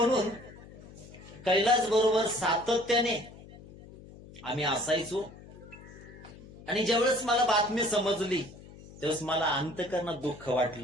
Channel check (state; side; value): noise; left; hum, 19 dB below the sound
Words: कैलास बरोबर सातत्याने आम्ही असायचो. आणि ज्यावेळेस मला बातमी समजली त्यावेळेस मला अंतकरणात दुःख